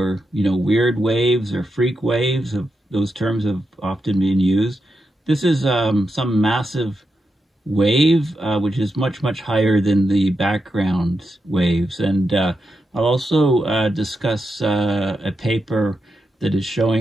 weird waves or freak waves. Those terms have often been used. This is some massive wave which is much higher than the background waves, and I'll also discuss a paper that is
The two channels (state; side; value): normal; both; correlation 0.86